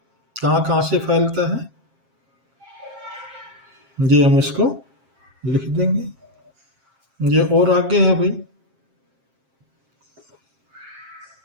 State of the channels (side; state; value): left; late; 7.5 ms